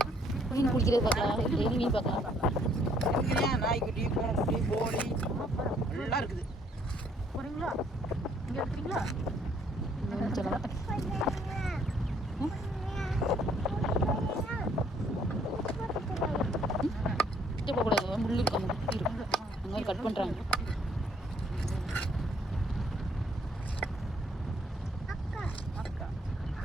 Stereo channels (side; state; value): both; normal; correlation 0.65